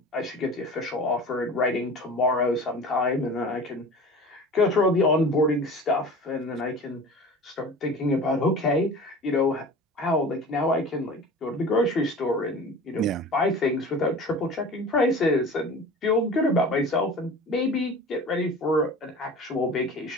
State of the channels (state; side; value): normal; both; correlation 0.38